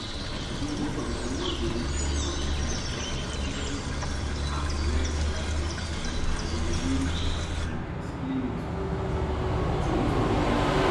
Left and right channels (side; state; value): both; identical; correlation 1.00